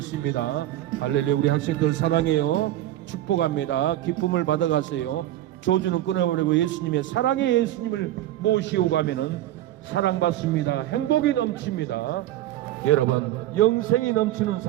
할렐루야. 우리 학생들 사랑해요. 축복합니다. 기쁨을 받아가세요. 조주는 끊어버리고 예수님의 사랑의 예수님을 모시고 가면은 사랑받습니다. 행복이 넘칩니다. 여러분, 영생이 넘치는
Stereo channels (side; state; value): left; quieter; 13.7 dB